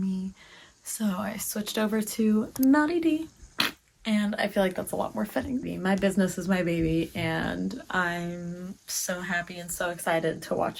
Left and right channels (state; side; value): identical; both; correlation 1.00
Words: So I switched over to Naughty D, and I feel like that's a lot more fitting. My business is my baby, and I'm so happy and so excited to watch